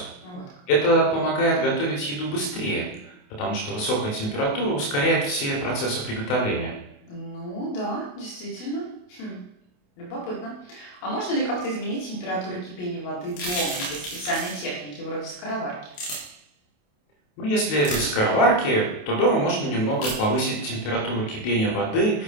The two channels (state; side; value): late; right; 28 ms